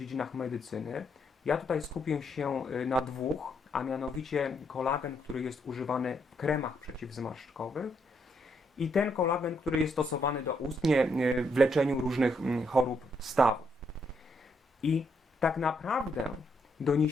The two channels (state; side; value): normal; both; correlation 0.75